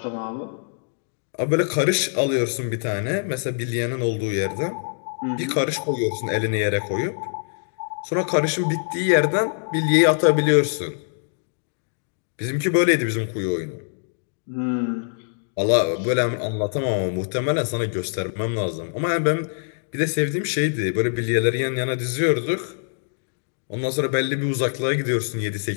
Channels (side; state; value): right; silent; digital silence